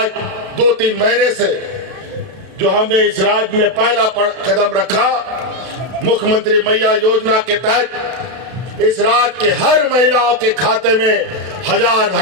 2-3 महीने से जो हमने इस राज्य में पहला कदम रखा, मुख्यमंत्री मैया योजना के तहत इस राज्य के हर महिलाओं के खाते में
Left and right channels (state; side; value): late; left; 32 ms